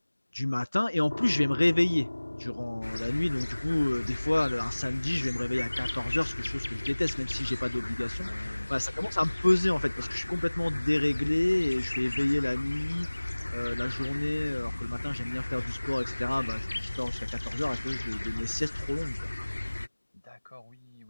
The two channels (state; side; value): inverted; both; correlation -1.00